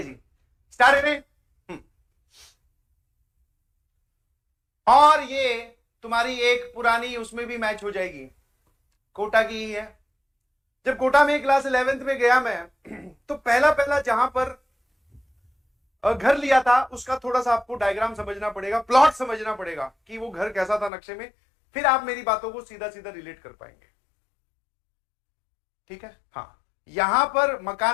जी, स्टार्ट करें। और ये तुम्हारी एक पुरानी उसमें भी मैच हो जाएगी, कोटा की ही है। जब कोटा में क्लास 11th में गया मैं तो पहला पहला जहां पर घर लिया था उसका थोड़ा सा आपको डायग्राम समझना पड़ेगा, प्लॉट समझना पड़ेगा कि वो घर कैसा था नक्शे में, फिर आप मेरी बातों को सीधा सीधा रिलेट कर पाएंगे। ठीक है, हाँ, यहां पर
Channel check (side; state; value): right; drops out; at 20.9 s